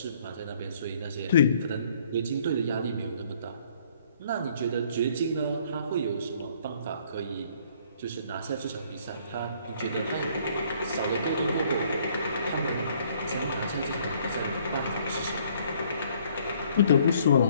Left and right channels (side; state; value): both; inverted; correlation -0.62